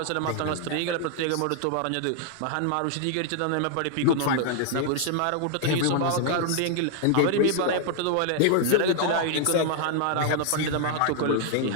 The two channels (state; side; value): different; both; correlation 0.00